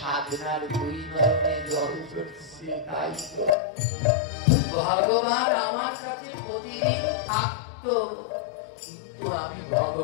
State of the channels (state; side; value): drops out; right; at 3.5 s